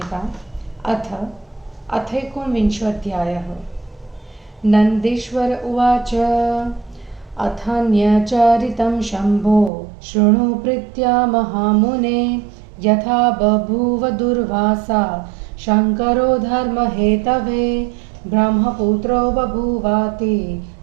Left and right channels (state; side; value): drops out; left; at 9.7 s